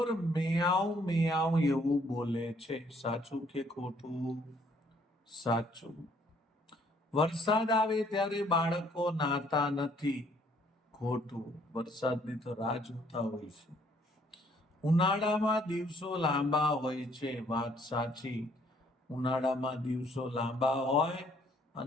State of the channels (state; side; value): normal; both; correlation 0.64